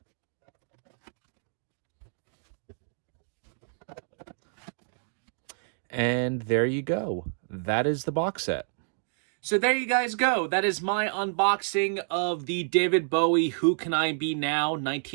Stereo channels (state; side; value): silent; left; digital silence